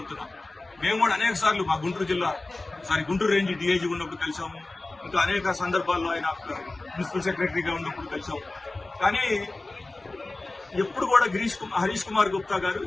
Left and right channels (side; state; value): right; quieter; 3.0 dB